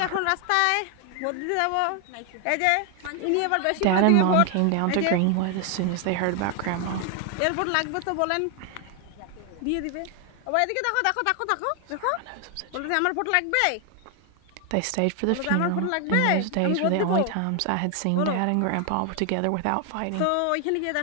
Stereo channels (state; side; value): different; both; correlation 0.00